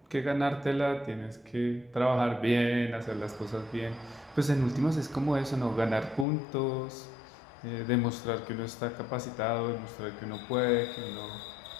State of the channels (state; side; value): drops out; right; at 6.2 s